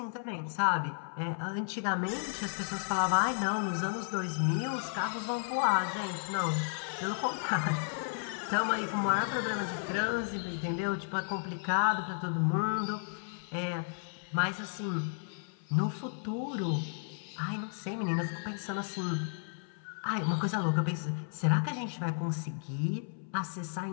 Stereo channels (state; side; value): silent; right; 56 dB below the other